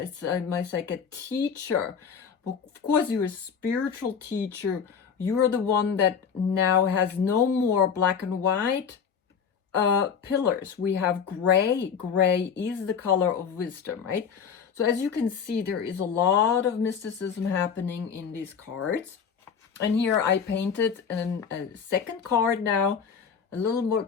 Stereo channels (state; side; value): quieter; right; 6.8 dB